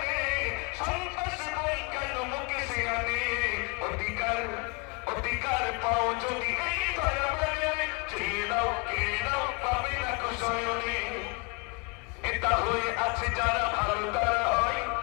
সন্ত্রাসী বই কেন মুখে সিয়ানে। অধিকার অধিকার পাও যদি এই ধরা বাজারে, চেয়ে নাও কেড়ে নাও পাবে না কুশয়নে। নেতা হয়ে আছে যারা ভালো তারা হয়,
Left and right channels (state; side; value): quieter; right; 30.5 dB